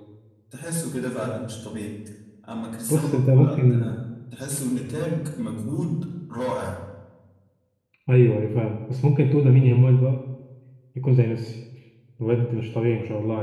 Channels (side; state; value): both; identical; correlation 1.00